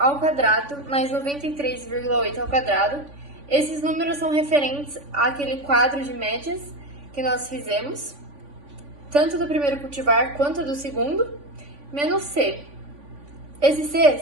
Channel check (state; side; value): late; left; 3.5 ms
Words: quadrado mais 93,8 ao quadrado. Esses números são referentes àquele quadro de médias que nós fizemos, tanto do primeiro cultivar quanto do segundo, menos C. Esse C